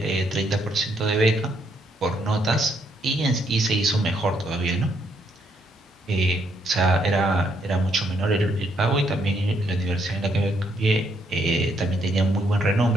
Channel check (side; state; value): both; normal; correlation 0.73